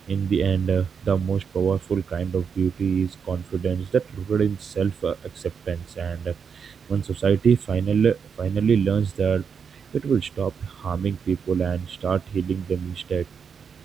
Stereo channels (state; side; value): quieter; left; 6.5 dB